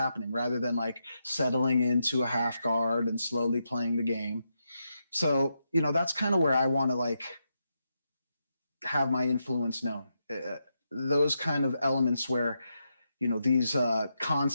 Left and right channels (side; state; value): both; inverted; correlation -0.84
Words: rather than like settling into a half guard and slowly playing the game. So, that's kind of where I want to like have my influence known. Those kind of elements where, these